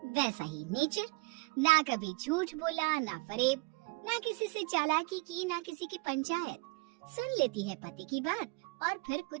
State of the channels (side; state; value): left; quieter; 27.3 dB